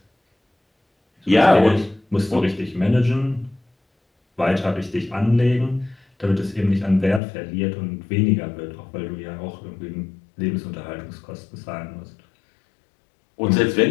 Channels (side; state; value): right; drops out; at 7.2 s